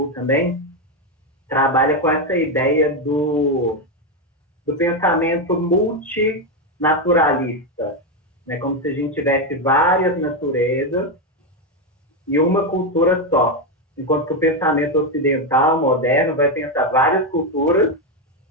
também, trabalha com essa ideia do pensamento multinaturalista, né? Como se a gente tivesse várias naturezas e uma cultura só. Enquanto que o pensamento ocidental, moderno, vai pensar várias culturas,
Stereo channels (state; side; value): normal; both; correlation 0.08